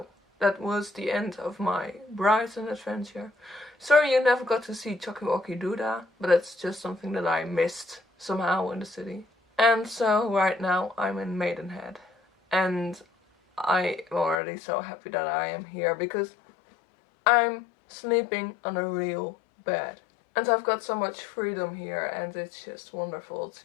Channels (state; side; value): drops out; right; at 14.4 s